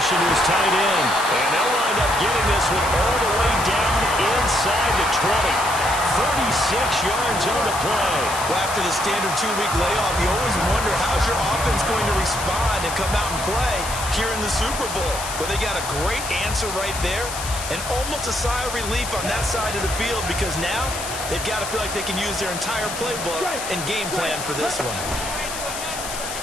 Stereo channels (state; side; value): noise; left; hiss, 8 dB below the sound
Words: to his tight end. And they'll wind up getting this one all the way down inside the 20. 36 yards on the play. Well, after the standard 2-week layoff, you always wonder how's your offense going to respond and come out and play here in the Super Bowl. But they got a great answer right there and almost a sigh of relief on that side of the field because now they've got to feel like they can use their entire playbook and game plan for this one.